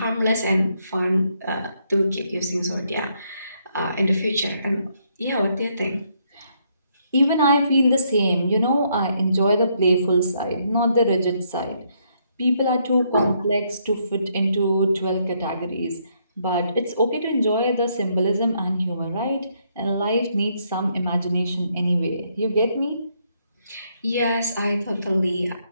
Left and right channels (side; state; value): both; inverted; correlation -0.73